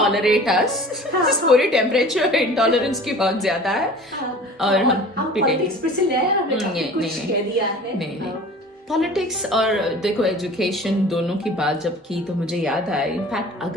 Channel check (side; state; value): both; normal; correlation 0.43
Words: us. पूरी टेम्परेचर इंटॉलरेंस की बहुत ज्यादा है और हम पॉलिटिक्स पे से ले आए, हमने कुछ कह दिया है. नहीं, पॉलिटिक्स और देखो एजुकेशन दोनों की बात जब की तो मुझे याद आया, इनफैक्ट